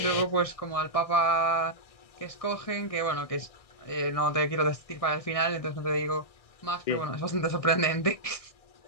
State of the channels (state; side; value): late; right; 1.6 ms